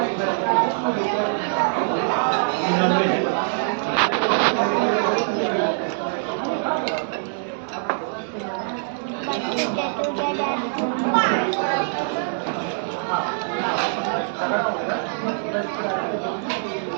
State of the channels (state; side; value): silent; left; digital silence